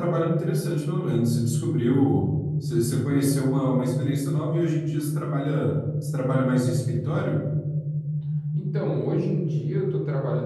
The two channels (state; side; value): identical; both; correlation 1.00